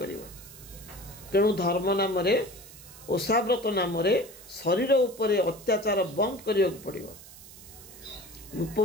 କରିବ। ତେଣୁ ଧର୍ମ ନାମରେ, ଓଷାବ୍ରତ ନାମରେ ଶରୀର ଉପରେ ଅତ୍ୟାଚାର ବନ୍ଦ କରିବାକୁ ପଡ଼ିବ।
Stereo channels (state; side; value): noise; right; hiss, 19 dB below the sound